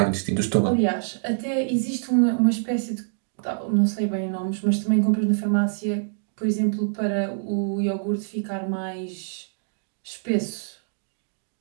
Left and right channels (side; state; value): left; silent; digital silence